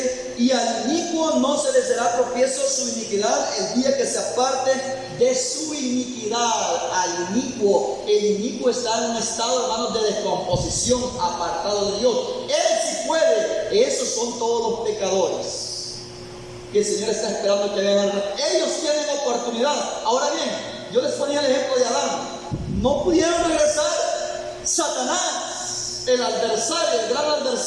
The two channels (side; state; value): both; identical; correlation 1.00